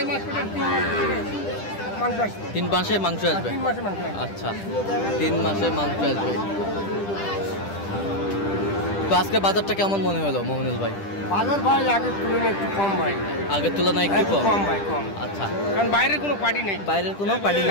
মাস পরে 3 মাস পরে মাংস আসবে। 3 মাসে মাংস আসবে? 3 মাসে মাংস আসবে। আচ্ছা, 3 মাসে মাংস আসবে। তো আজকে বাজারটা কেমন মনে হলো মমিনুল ভাই? বাজার ভাই আগের তুলনায় একটু কম ভাই। আগের তুলনায় একটু কম? কম ভাই, কম। আচ্ছা। কারণ বাইরের কোনো পার্টি নেই। বাইরের কোনো পার্টি না,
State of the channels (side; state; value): right; late; 10 ms